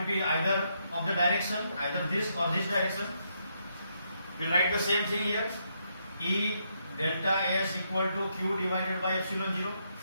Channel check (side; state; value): both; inverted; correlation -0.77